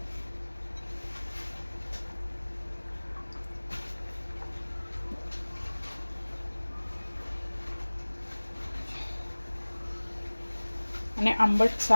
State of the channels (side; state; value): both; inverted; correlation -1.00